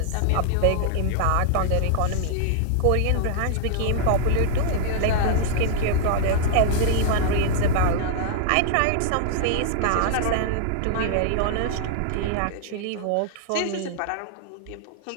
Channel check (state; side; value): different; both; correlation -0.01